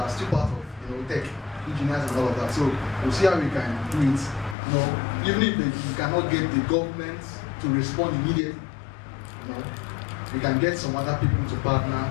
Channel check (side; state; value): right; drops out; at 4.5 s